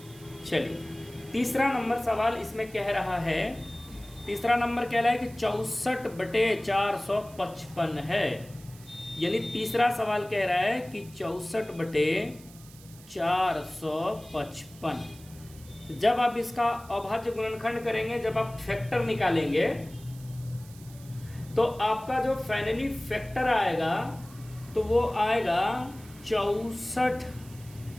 चलिए तीसरा नंबर सवाल इसमें कह रहा है, तीसरा नंबर कह रहा है कि 64 बटे 455 है। यानी तीसरा सवाल कह रहा है कि 64 बटे 455। जब आप इसका अभाज्य गुणनखंड करेंगे, जब आप फैक्टर निकालेंगे, तो आपका जो फाइनली फैक्टर आएगा तो वो आएगा 64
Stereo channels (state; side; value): noise; right; hiss, 22 dB below the sound